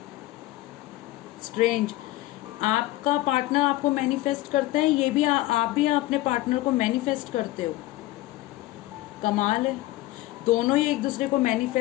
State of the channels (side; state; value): right; quieter; 17.4 dB